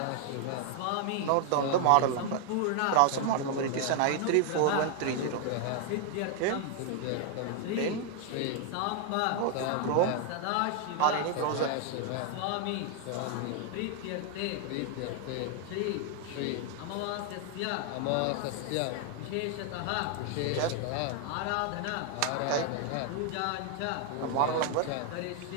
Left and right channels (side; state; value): both; different; correlation 0.00